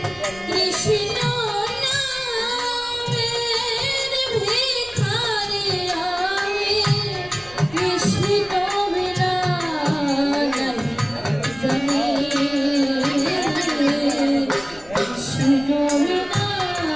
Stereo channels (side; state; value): left; noise; rumble, 22 dB below the sound